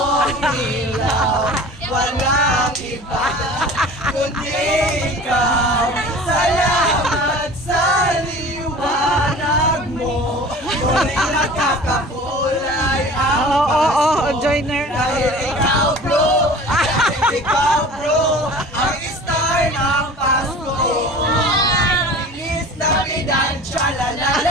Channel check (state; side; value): normal; both; correlation 0.41